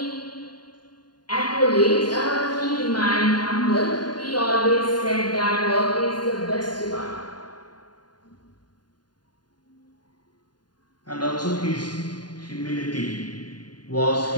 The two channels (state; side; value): late; right; 0.70 ms